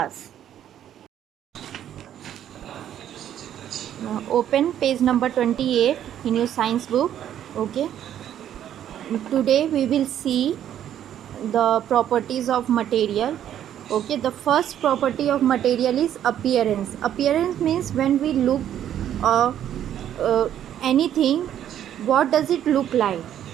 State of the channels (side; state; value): left; quieter; 10.6 dB